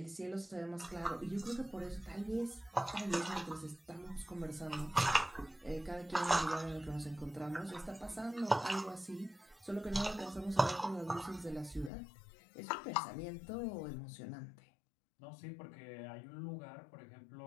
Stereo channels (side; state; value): right; drops out; at 11.9 s